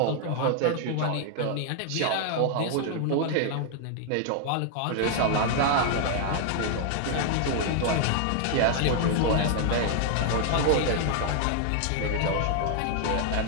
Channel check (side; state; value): both; different; correlation 0.00